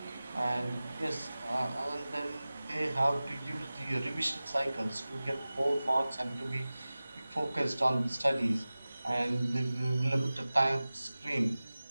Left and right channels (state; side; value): inverted; both; correlation -0.97